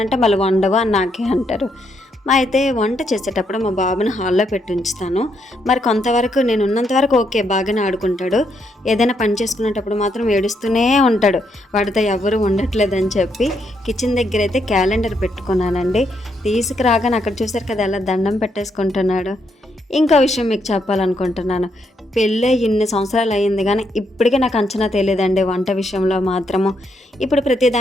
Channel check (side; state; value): both; normal; correlation 0.77